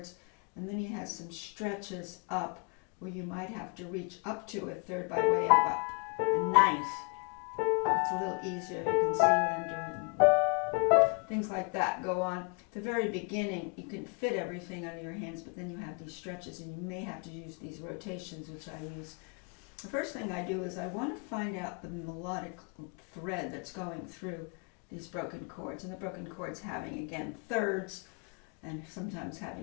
and then he has some stretches up where you might have to reach up to a third by way of a ninth. It's a little easier. You can see what I'm doing. Things like that go on. At the very beginning, you can fit everything under your hands, but then you have these stretches, and you may have to use these rotations, which I use. The first thing I do is I want to find out the melodic thread that's going through these broken chords. And the broken chords having, again, thirds, and sometimes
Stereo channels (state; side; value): quieter; right; 33.7 dB